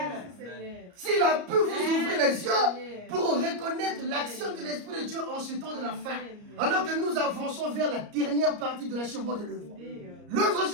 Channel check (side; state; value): left; late; 34 ms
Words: Seigneur. S'il a pu vous ouvrir les yeux pour reconnaître l'action de l'Esprit de Dieu en ce temps de la fin, alors que nous avançons vers la dernière partie de l'achèvement de l'œuvre. L'œuvre est